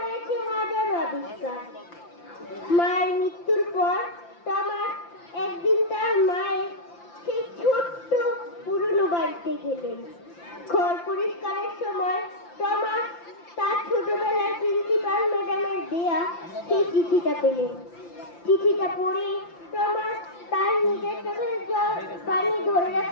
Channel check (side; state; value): right; late; 5.8 ms